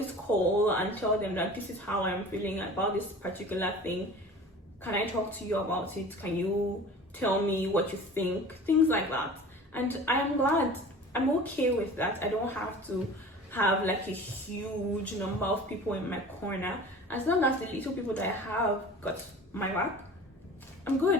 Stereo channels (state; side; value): normal; both; correlation 0.41